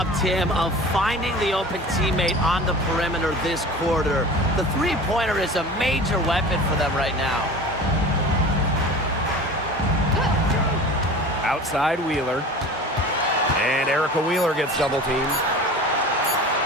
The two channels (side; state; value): both; normal; correlation 0.38